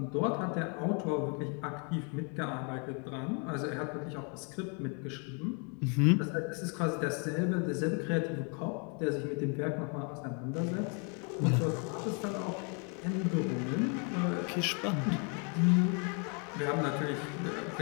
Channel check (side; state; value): right; quieter; 37.1 dB